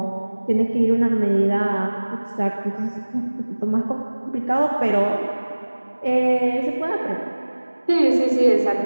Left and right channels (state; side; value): inverted; both; correlation -1.00